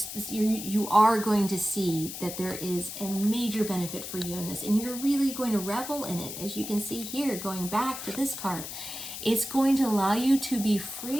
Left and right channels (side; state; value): left; noise; hiss, 8 dB below the sound